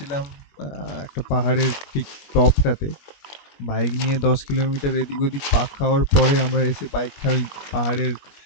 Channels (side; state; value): right; late; 21 ms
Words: একটা পাহাড়ের ঠিক টপটাতে। বাইক নিয়ে 10 কিলোমিটার এদিক ওদিক পাক খাওয়ার পরে আমরা এসে বাইকটা ওই পাহাড়ের